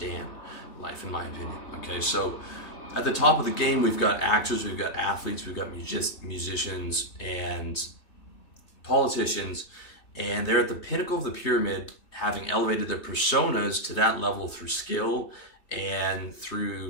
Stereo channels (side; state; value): right; late; 3.3 ms